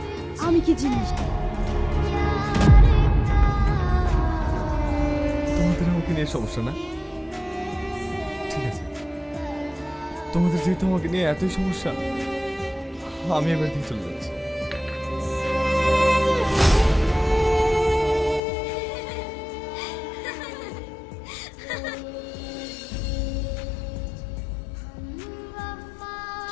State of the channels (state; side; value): drops out; right; at 18.4 s